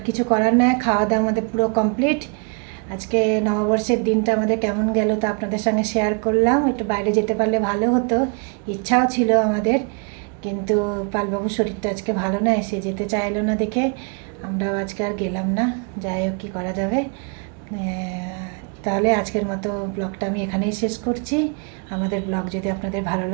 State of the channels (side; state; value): left; quieter; 36.8 dB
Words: কিছু করার নয়, খাওয়া দাওয়া আমাদের পুরো কমপ্লিট। আজকে নববর্ষের দিনটা আমাদের কেমন গেল তা আপনাদের সঙ্গে শেয়ার করলাম। একটু বাইরে যেতে পারলে ভালো হতো, ইচ্ছাও ছিল আমাদের, কিন্তু পালবাবুর শরীরটা আজকে ভালো নয়, সে যেতে চাইলো না দেখে আমরাও আজকে আর গেলাম না। যাই হোক, কী করা যাবে। তাহলে আজকের মতো ব্লগটা আমি এখানেই শেষ করছি। আমাদের ব্লগ যদি আপনাদের ভালো